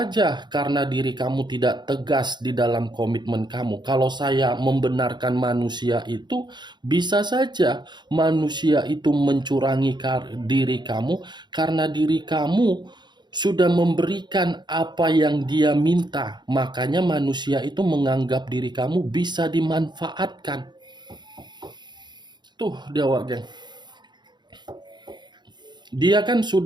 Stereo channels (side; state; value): left; late; 0.21 ms